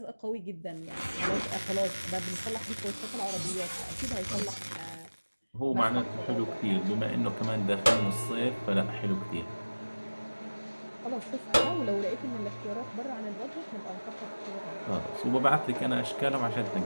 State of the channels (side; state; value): both; inverted; correlation -1.00